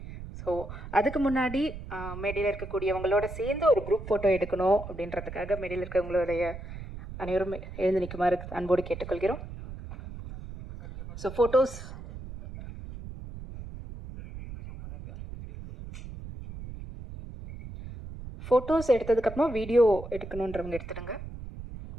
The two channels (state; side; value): noise; right; rumble, 11 dB below the sound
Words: ஸோ அதுக்கு முன்னாடி மேடையில் இருக்கக்கூடியவங்களோட சேர்ந்து ஒரு குரூப் ஃபோட்டோ எடுக்கணும் அப்படின்றதுக்காக மேடையில் இருக்கவங்களுடைய அனைவரும் எழுந்து நிற்குமாறு அன்போடு கேட்டுக்கொள்கிறோம். ஸோ ஃபோட்டோஸ் எடுத்ததுக்கப்புறமா வீடியோ எடுக்கணுன்றவங்க எடுத்துடுங்க.